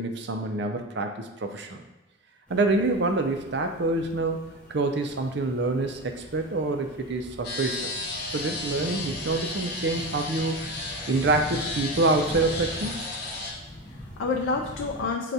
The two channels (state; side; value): normal; both; correlation 0.21